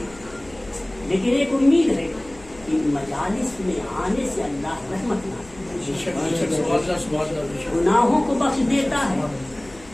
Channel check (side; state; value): left; noise; hum, 23 dB below the sound